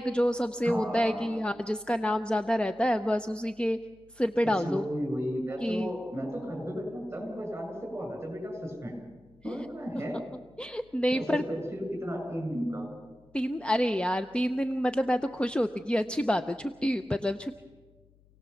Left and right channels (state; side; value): noise; left; hum, 30 dB below the sound